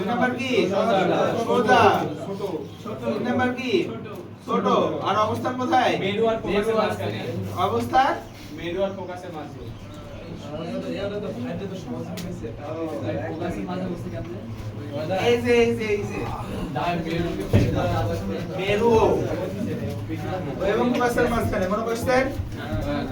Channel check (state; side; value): identical; both; correlation 1.00